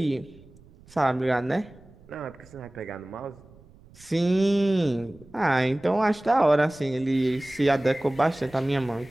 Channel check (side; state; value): right; noise; rumble, 25 dB below the sound